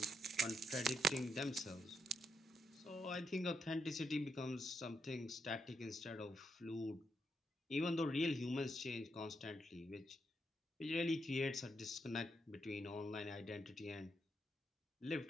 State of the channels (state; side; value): normal; both; correlation 0.80